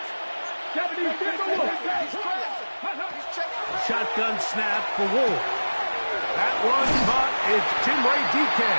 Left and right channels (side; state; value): both; inverted; correlation -1.00